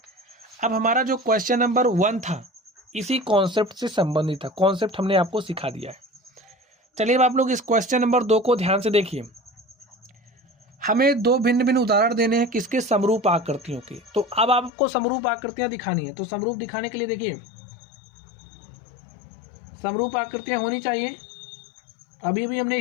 अब हमारा जो क्वेश्चन नंबर 1 था इसी कॉन्सेप्ट से संबंधित था, कॉन्सेप्ट हमने आपको सिखा दिया है। चलिए अब आप लोग इस क्वेश्चन नंबर 2 को ध्यान से देखिए। हमें दो भिन्न भिन्न उदाहरण देने हैं किसके? समरूप आकृतियों के। तो अब आपको समरूप आकृतियां दिखानी है, तो समरूप दिखाने के लिए देखिए, समरूप आकृतियां होनी चाहिए। अभी भी हमने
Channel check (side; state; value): right; drops out; at 14.7 s